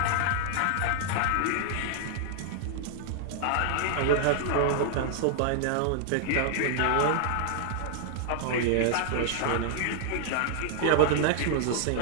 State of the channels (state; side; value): different; both; correlation -0.01